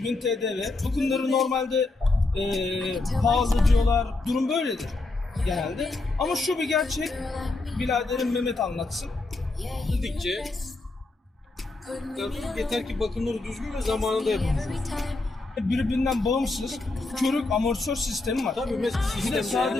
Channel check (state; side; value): quieter; right; 3.2 dB